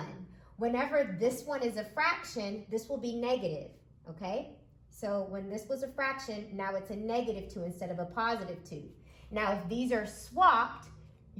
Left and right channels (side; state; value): both; identical; correlation 1.00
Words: Whenever this one is a fraction, this will be negative, okay? So when this was a fraction, now it's a -2 instead of a +2. Now if these are swapped,